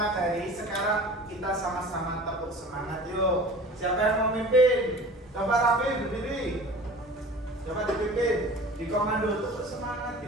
sekarang kita sama-sama tepuk semangat yuk. Siapa yang mau mimpin? Coba Rafi berdiri. Coba dipimpin. Di komando tepuk semangat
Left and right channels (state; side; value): normal; both; correlation 0.41